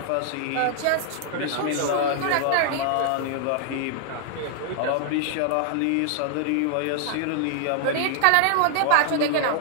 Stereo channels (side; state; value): both; different; correlation 0.00